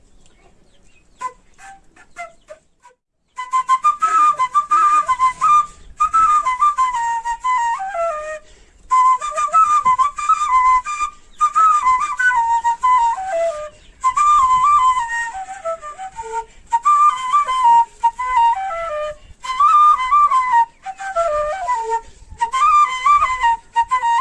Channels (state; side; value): identical; both; correlation 1.00